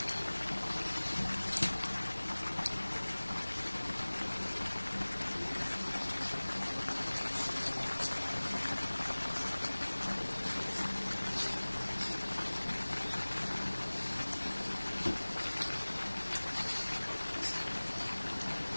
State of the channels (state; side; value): inverted; both; correlation -1.00